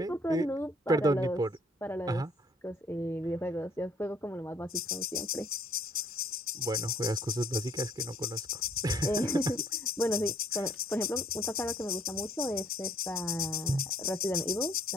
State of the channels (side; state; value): both; normal; correlation 0.61